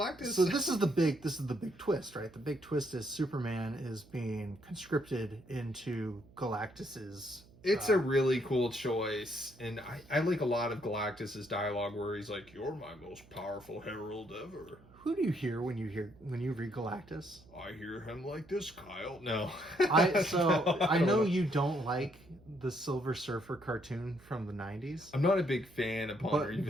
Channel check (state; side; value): noise; right; hum, 25 dB below the sound